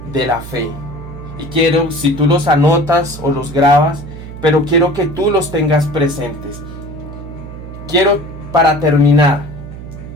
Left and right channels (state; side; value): noise; right; hum, 12 dB below the sound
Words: de la fe. Y quiero, si tú los anotas o los grabas, pero quiero que tú los tengas presentes. Para terminar,